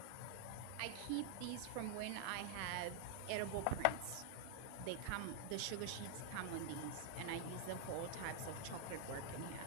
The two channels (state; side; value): different; both; correlation 0.00